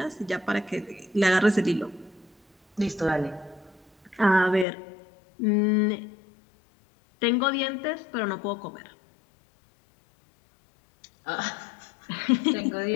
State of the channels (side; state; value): right; drops out; at 4.7 s